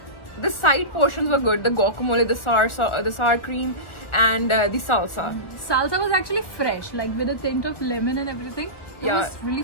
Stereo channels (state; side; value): late; right; 1.4 ms